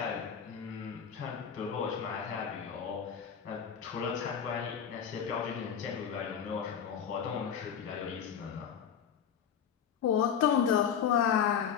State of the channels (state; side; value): quieter; right; 8.0 dB